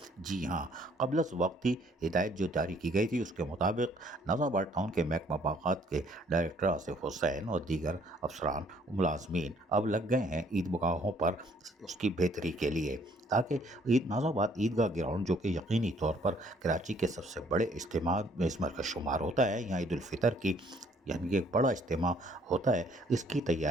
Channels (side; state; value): both; normal; correlation 0.62